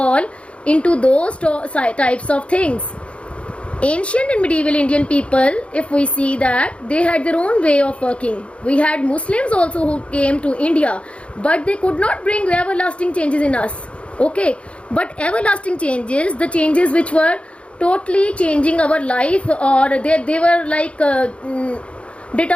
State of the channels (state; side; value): late; right; 0.060 ms